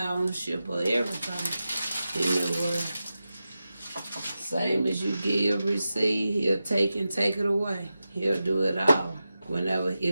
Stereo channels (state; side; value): inverted; both; correlation -0.92